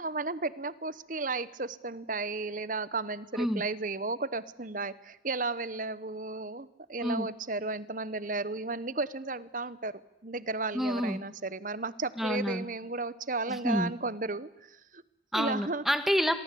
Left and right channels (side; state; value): both; normal; correlation 0.32